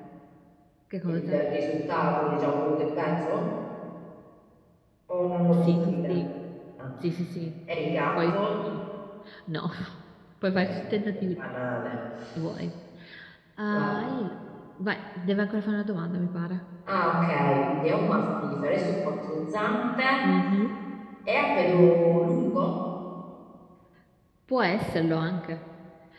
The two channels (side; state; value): both; identical; correlation 1.00